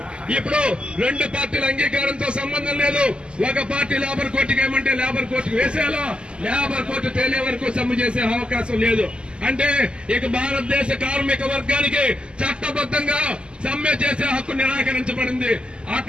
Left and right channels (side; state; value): left; late; 0.050 ms